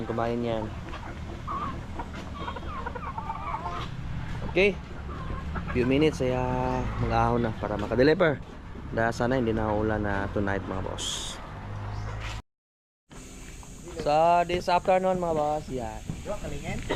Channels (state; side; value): identical; both; correlation 1.00